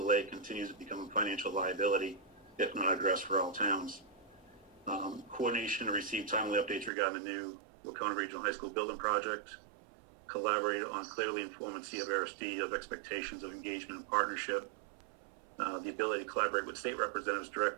continues to become a financial liability if not addressed for all towns. Coordination to receive timely updates regarding the new Wacona Regional High School building project. Collaborate on clearly informing CVRSD of expectations of engagement and partnership. The ability to collaborate with state representatives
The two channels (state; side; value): drops out; left; at 6.9 s